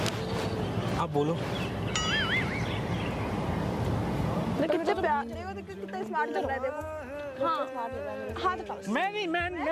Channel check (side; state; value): both; identical; correlation 1.00